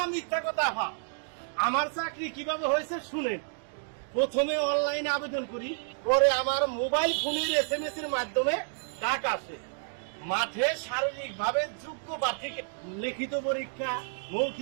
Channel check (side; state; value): left; silent; digital silence